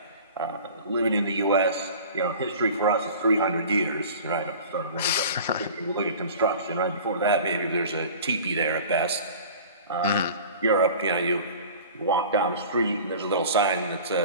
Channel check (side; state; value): both; inverted; correlation -0.41